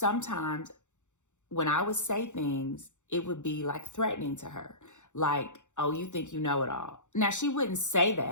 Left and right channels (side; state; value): right; late; 0.85 ms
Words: when I would say things, it would be like threatening to her. Like, oh, you think you know it all. Now, she wouldn't say